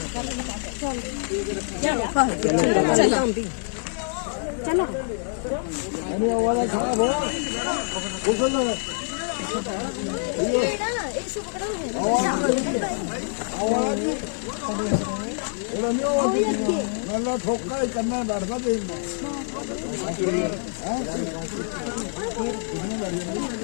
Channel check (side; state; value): right; silent; 61 dB below the other